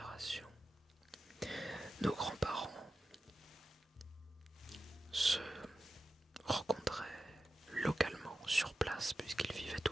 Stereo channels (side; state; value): both; normal; correlation 0.91